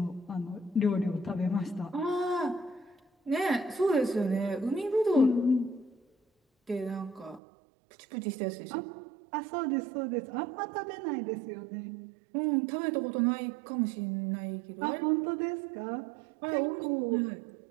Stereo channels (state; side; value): drops out; left; at 7.4 s